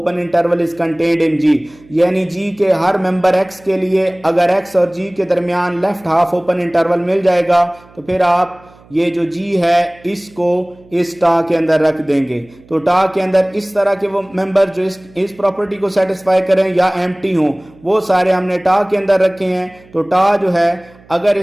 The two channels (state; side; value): noise; right; hum, 26 dB below the sound